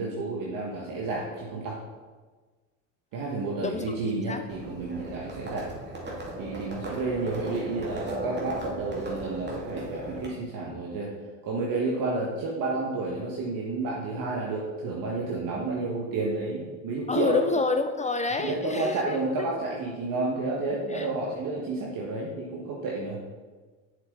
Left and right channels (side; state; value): both; normal; correlation 0.12